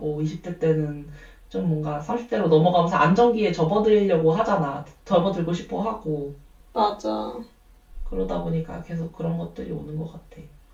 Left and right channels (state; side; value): identical; both; correlation 1.00